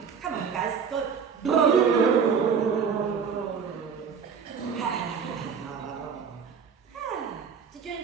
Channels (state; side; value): quieter; left; 6.5 dB